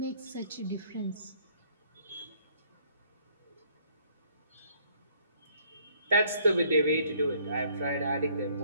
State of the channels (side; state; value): both; inverted; correlation -0.63